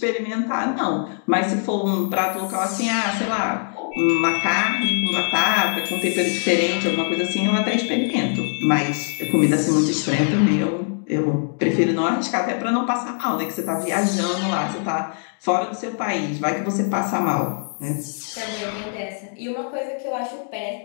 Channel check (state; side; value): silent; right; 64 dB below the other